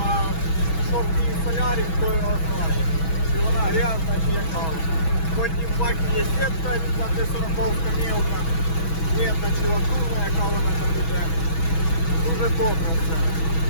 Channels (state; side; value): late; right; 6.2 ms